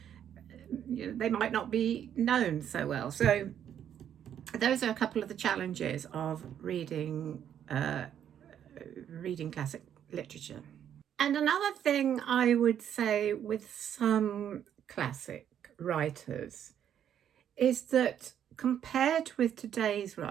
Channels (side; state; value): left; quieter; 9.6 dB